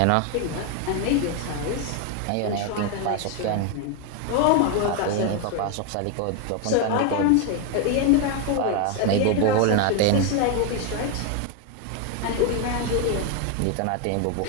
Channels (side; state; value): both; different; correlation 0.01